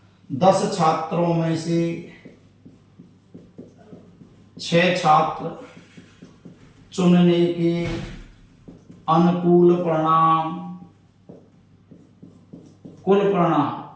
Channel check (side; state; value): both; identical; correlation 1.00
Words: 10 छात्रों में से 6 छात्र चुनने के अनुकूल परिणाम, कुल